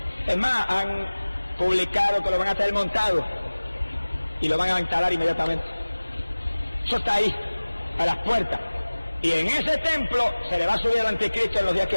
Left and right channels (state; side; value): inverted; both; correlation -1.00